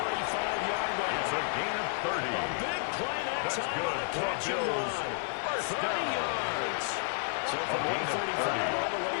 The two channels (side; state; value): right; silent; digital silence